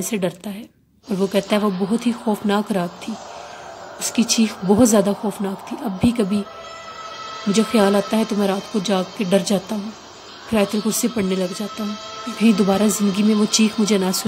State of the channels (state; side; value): identical; both; correlation 1.00